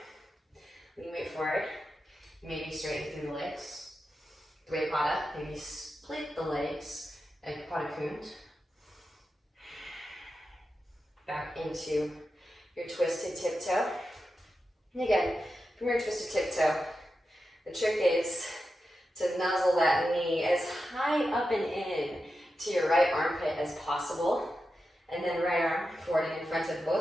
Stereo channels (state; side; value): normal; both; correlation 0.90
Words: knee weight forward, maybe straighten through the legs. Dvipada, maybe split the legs, and Pada Kund. Back into your twisted tiptoe. And again, from your twisted tiptoe, the trick is to nuzzle that knee as high up and in to your right armpit as possible. And then right arm forward and in front of